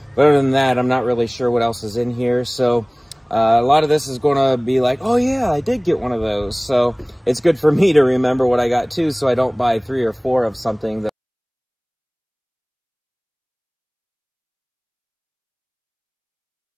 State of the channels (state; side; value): identical; both; correlation 1.00